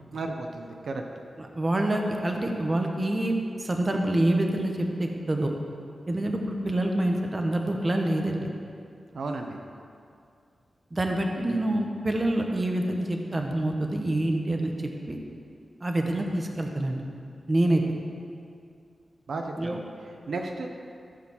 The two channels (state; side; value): normal; both; correlation 0.95